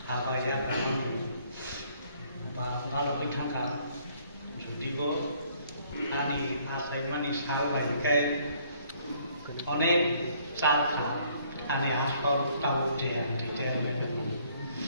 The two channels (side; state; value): both; inverted; correlation -0.64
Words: apa ya kamu kalau kita kan jadi kok ani asal manis hal bagai অনেক চাল খা ani aspal tahu dia